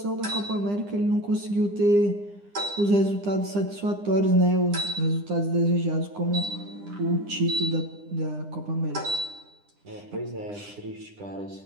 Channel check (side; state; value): left; late; 9.9 ms